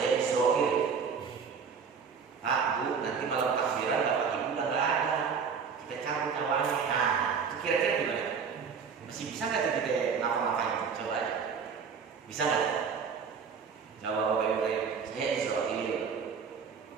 Israel. Pak, bu, nanti malam takbiran bapak ibu udah nggak ada, kita cabut nyawanya. Nah, itu kira-kira gimana? Masih bisa nggak tuh kita ngapa-ngapain? Coba aja. Bisa nggak? Jawab bapak ibu saya Israel.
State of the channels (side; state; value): left; quieter; 6.1 dB